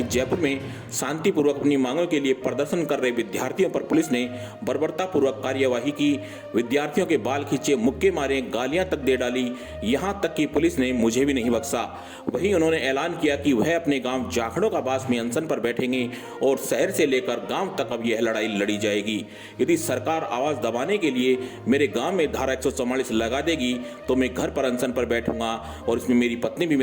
जयपुर में शांतिपूर्वक अपनी मांगों के लिए प्रदर्शन कर रहे विद्यार्थियों पर पुलिस ने बर्बरतापूर्वक कार्यवाही की। विद्यार्थियों के बाल खींचे, मुक्के मारे, गालियां तक दे डाली, यहां तक कि पुलिस ने मुझे भी नहीं बख्शा। वहीं उन्होंने ऐलान किया कि वह अपने गांव जाखड़ों का बास में अनशन पर बैठेंगे और शहर से लेकर गांव तक अब यह लड़ाई लड़ी जाएगी। यदि सरकार आवाज दबाने के लिए मेरे गांव में धारा 144 लगा देगी तो मैं घर पर अनशन पर बैठूंगा और इसमें मेरी पत्नी भी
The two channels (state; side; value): identical; both; correlation 1.00